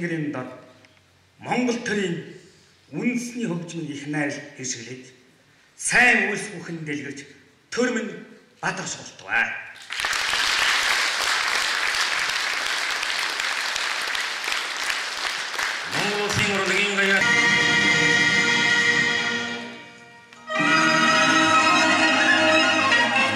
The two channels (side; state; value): both; identical; correlation 1.00